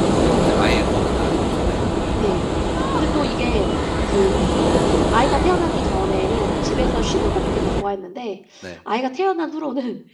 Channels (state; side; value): identical; both; correlation 1.00